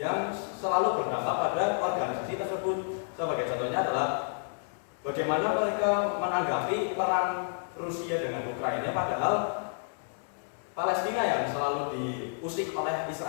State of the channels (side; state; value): right; silent; 58 dB below the other